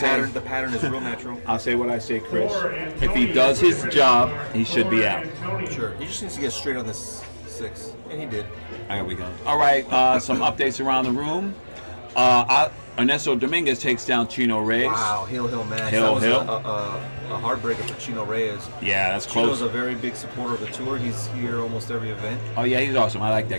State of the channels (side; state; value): both; inverted; correlation -1.00